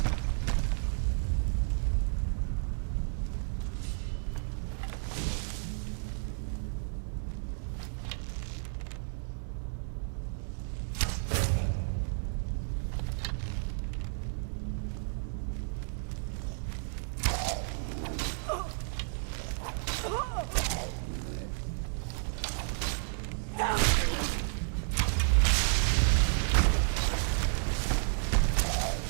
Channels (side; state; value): left; silent; digital silence